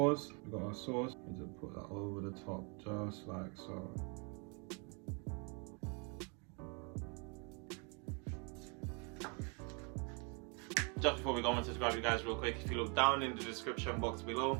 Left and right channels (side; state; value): left; quieter; 35.1 dB